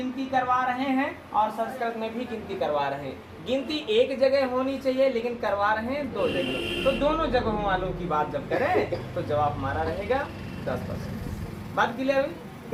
करवा रहे हैं और संस्कृत में भी गिनती करवा रहे हैं। गिनती एक जगह होनी चाहिए लेकिन करवा रहे हैं 2 जगह। तो दोनों जगहों वालों की बात जब करें तो जवाब हमारा रहेगा 10%। बात क्लियर हुई?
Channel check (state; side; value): identical; both; correlation 1.00